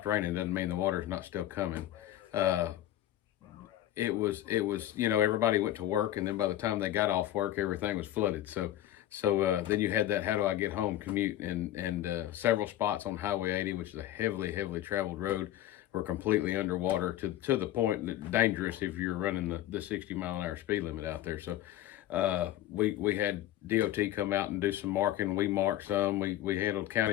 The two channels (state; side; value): quieter; right; 13.2 dB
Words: raining doesn't mean the water's not still coming. It was, everybody went to work, and then by the time they got off work, everything was flooded. So then you had that how do I get home commute, and several spots on Highway 80, which is a heavily traveled road, were completely underwater to the point that dangerous if you're running the 60-mile-an-hour speed limit out there. So we had DOT come out and do some marking. We marked some. We handled